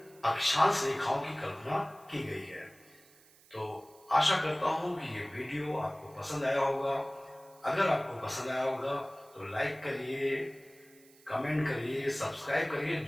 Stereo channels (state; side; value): noise; right; hiss, 26 dB below the sound